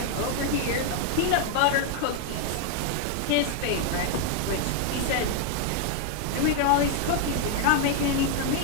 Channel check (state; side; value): different; both; correlation 0.00